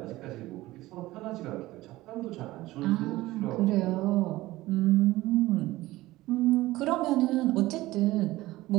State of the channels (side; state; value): left; quieter; 17.8 dB